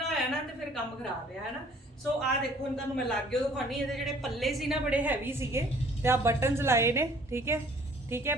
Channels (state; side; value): normal; both; correlation 0.56